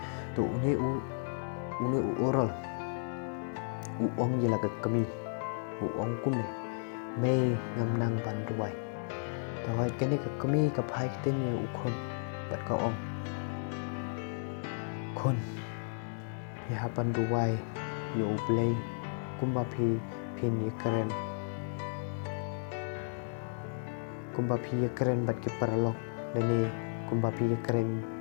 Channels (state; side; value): silent; right; digital silence